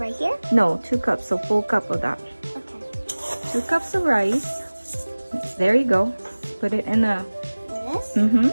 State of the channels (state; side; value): inverted; both; correlation -1.00